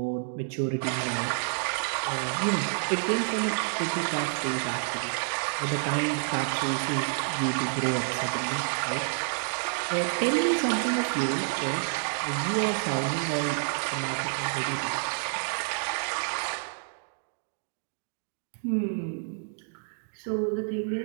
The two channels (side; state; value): left; silent; digital silence